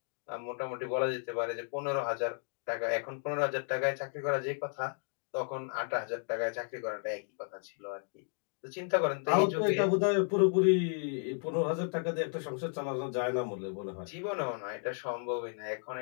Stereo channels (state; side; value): silent; right; 55 dB below the other